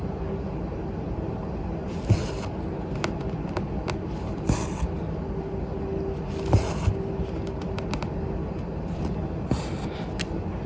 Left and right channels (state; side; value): identical; both; correlation 1.00